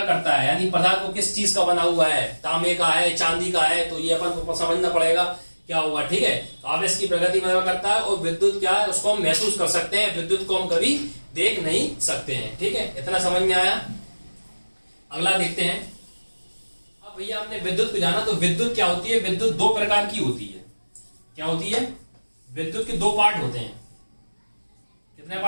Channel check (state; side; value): inverted; both; correlation -1.00